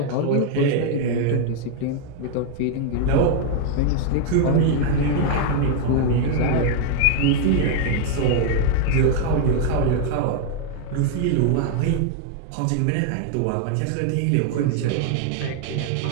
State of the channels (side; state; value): both; different; correlation 0.00